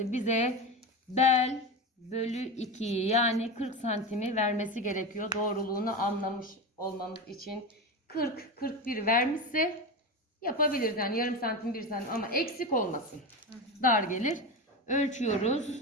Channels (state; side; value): normal; both; correlation 0.21